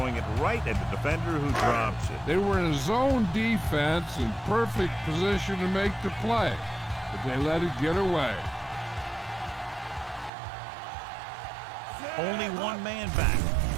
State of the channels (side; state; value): left; drops out; at 10.3 s